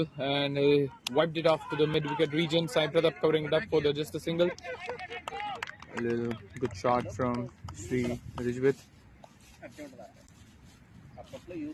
and wiped it off to the mid-wicket region. Sai Pratap covering it up for just a single. A little good shot from Sri Ridgewith.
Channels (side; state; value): both; identical; correlation 1.00